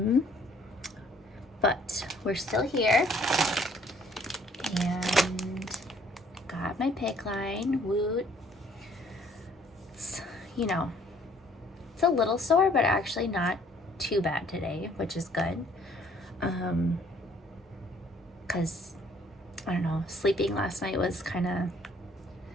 But we're still here, and got my PICC line. Woot. It's, it's a little sore, but actually not too bad today, which is good. Because I don't know, sleeping last night was kind of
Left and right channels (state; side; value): normal; both; correlation 0.60